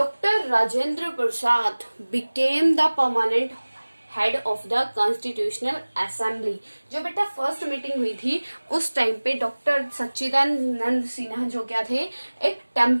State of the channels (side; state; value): both; inverted; correlation -1.00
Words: Rajendra Prasad became the permanent head of the constitutional assembly. जो बेटा first meeting हुई थी उस time पे doctor Sachchidanand Sinha जो क्या थे, एक